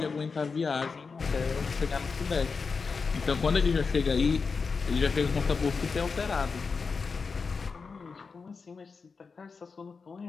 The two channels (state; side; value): quieter; right; 4.9 dB